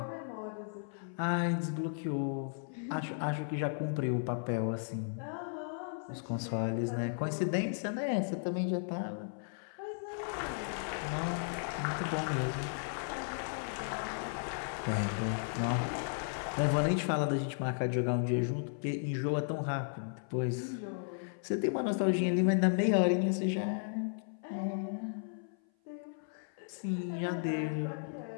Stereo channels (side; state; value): right; silent; 54 dB below the other